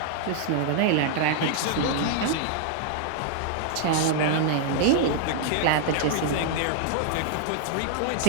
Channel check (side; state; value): both; different; correlation -0.01